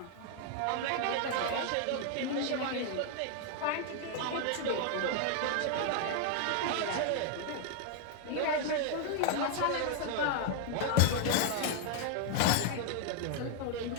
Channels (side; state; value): both; different; correlation 0.00